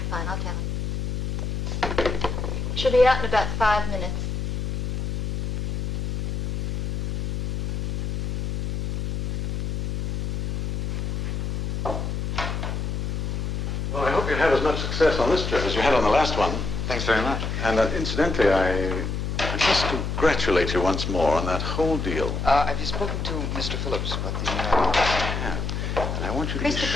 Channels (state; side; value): noise; left; hum, 2 dB below the sound